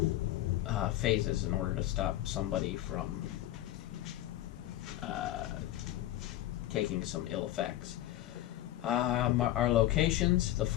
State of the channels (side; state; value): right; quieter; 14.3 dB